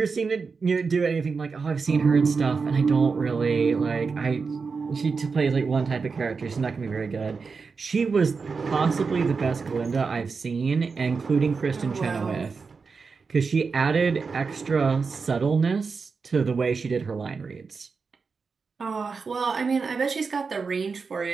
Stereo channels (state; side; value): quieter; left; 4.9 dB